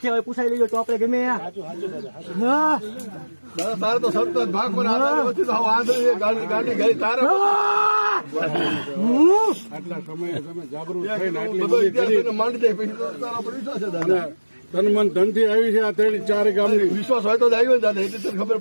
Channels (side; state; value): both; inverted; correlation -1.00